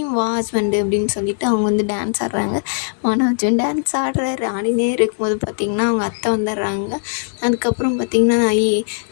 வா ஹஸ்பண்டு அப்படின்னு சொல்லிட்டு அவங்க வந்து டான்ஸ் ஆடுறாங்க. மனோஜும் டான்ஸ் ஆடுறாரு. ஆடினே இருக்கும்போது பார்த்திங்கன்னா அவங்க அத்தை வந்துடுறாங்க. அதுக்கப்புறம் பார்த்திங்கன்னா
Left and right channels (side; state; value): right; silent; 59 dB below the other